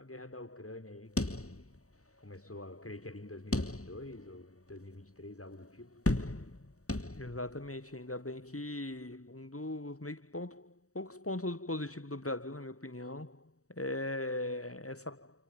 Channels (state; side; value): late; right; 0.65 ms